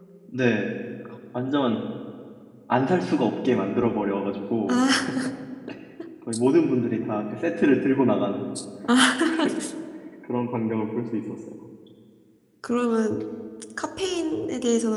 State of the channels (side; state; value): both; identical; correlation 1.00